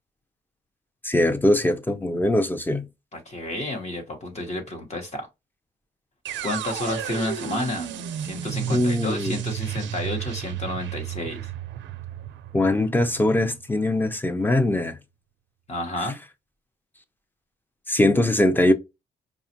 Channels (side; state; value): both; normal; correlation 0.74